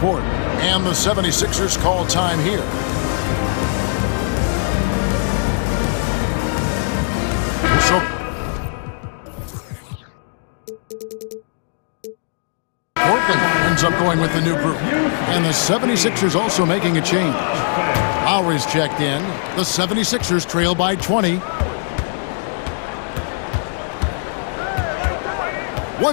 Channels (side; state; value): right; silent; digital silence